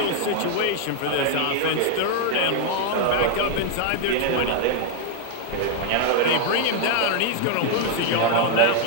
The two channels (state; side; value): different; both; correlation 0.00